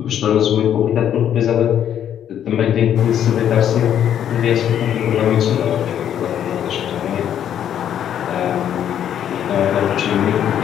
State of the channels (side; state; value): right; quieter; 9.8 dB